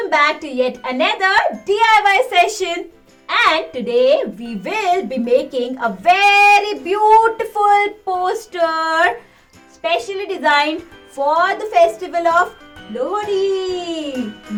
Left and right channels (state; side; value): identical; both; correlation 1.00